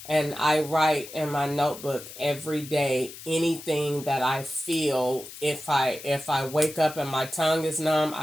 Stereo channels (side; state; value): left; noise; hiss, 14 dB below the sound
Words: And I write in my notebook every day anything that I feel. If I wake up and my tongue is numb,